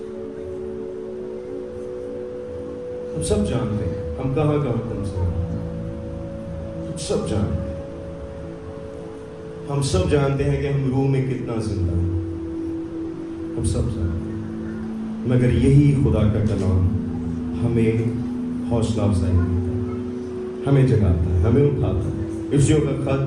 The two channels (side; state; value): both; identical; correlation 1.00